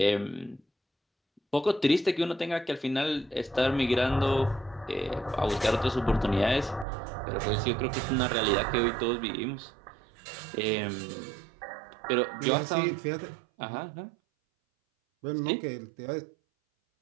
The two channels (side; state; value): left; drops out; at 6.9 s